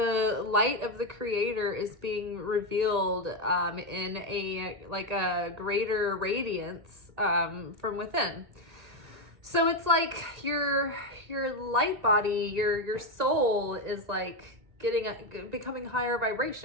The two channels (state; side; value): late; left; 1.8 ms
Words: light of the Creator is being revealed in a greater radiance from within. So it's like your light body, your soul is like becoming higher